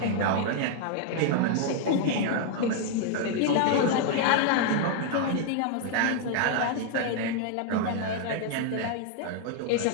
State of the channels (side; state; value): both; different; correlation 0.00